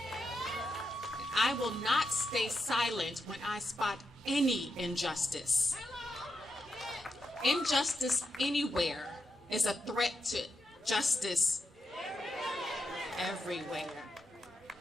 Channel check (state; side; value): normal; both; correlation 0.85